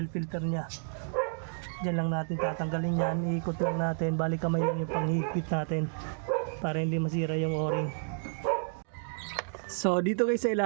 filter nya. Diyan lang natin tatanggalin yan, iikot lang natin, bali kamay lang yung panghigpit natin para hindi masira yung o-ring. So dito guys sa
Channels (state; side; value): silent; left; 57 dB below the other